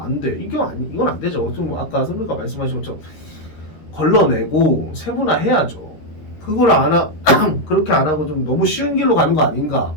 돼. 이건 안 되죠. 좀 아까 선배가 말씀하신 것처럼 걸러내고 세분화해야죠. 그걸 그렇게 안 하고 좀 너무 쉬운 길로 가는 거 아닌가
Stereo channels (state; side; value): late; right; 13 ms